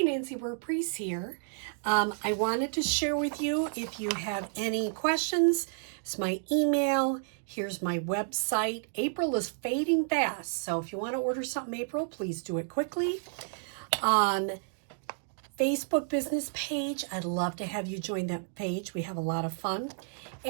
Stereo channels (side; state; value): left; silent; digital silence